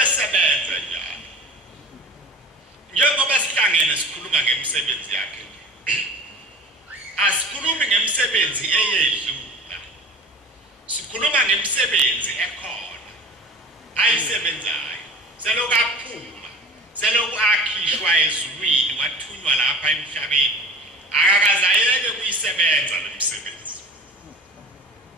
esebenza njalo njengoba sihlangene sikhuluma ngemisebenzi yakhe asikhulumi ngemisebenzi eyedlula sikhuluma ngemisebenzi ekhona ayisebenzayo selokhu aphuma selokhu akhishwa ezulwini wathunywa lapha emhlabeni akakaze ayeke kuyisebenza lo msebenzi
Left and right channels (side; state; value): both; normal; correlation 0.39